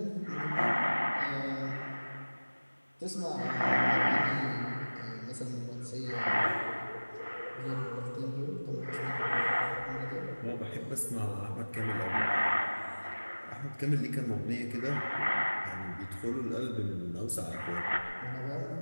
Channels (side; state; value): both; inverted; correlation -1.00